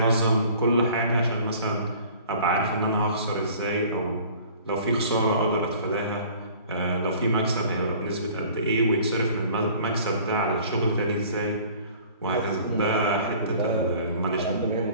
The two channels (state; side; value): inverted; both; correlation -0.49